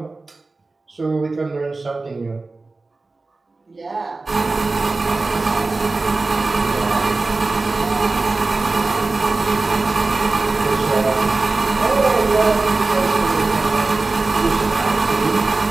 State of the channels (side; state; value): left; quieter; 3.5 dB